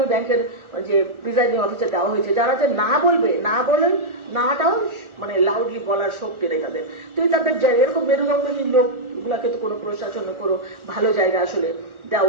ব্যাংকের যে প্রিজাইডিং অফিসার দেওয়া হয়েছে, যারা যে না বলবে, না বলে নাটাও মানে লাউডলি বলার শক্তি নেই তাদের। তো তাদের এরকম মেরুদণ্ডহীন লোকগুলাকে তো কোনো প্রশাসন কোনো ভালো জায়গা আসলে দেওয়া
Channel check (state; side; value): late; left; 1.3 ms